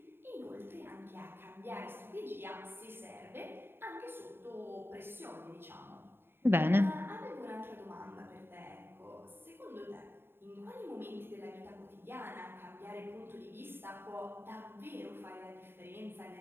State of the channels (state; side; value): late; left; 0.11 ms